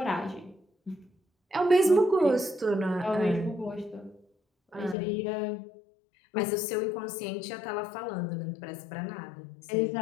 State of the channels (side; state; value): right; drops out; at 5.0 s